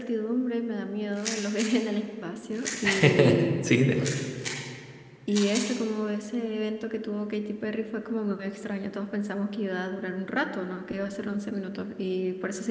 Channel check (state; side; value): identical; both; correlation 1.00